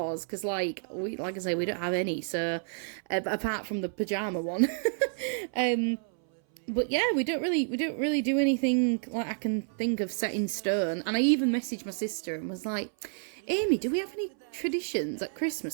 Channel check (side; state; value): left; silent; 58 dB below the other